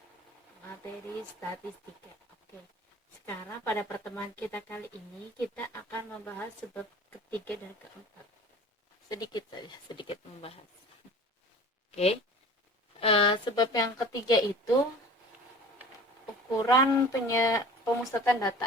materi statistika. Oke. Sekarang pada pertemuan kita kali ini kita akan membahas sebab ketiga dan keempat. Sedikit membahas. Oke. Sebab yang ketiga itu ukuran pemusatan data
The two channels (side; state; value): both; normal; correlation 0.42